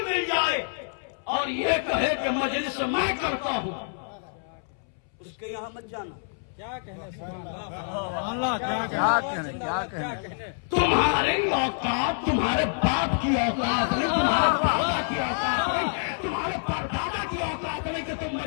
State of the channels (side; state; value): right; silent; 60 dB below the other